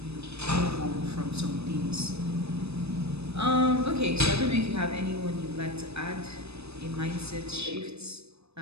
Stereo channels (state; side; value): late; left; 0.79 ms